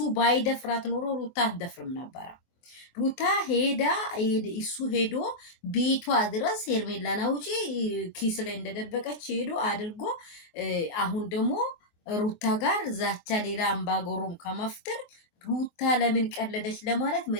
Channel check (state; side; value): late; right; 24 ms